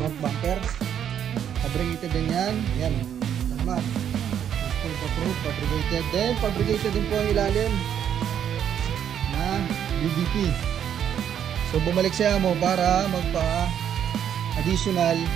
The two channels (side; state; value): left; quieter; 9.3 dB